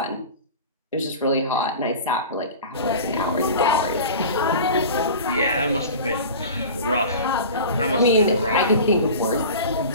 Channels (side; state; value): both; inverted; correlation -0.36